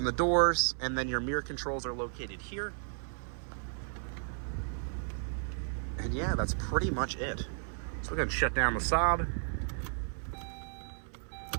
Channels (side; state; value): left; silent; 55 dB below the other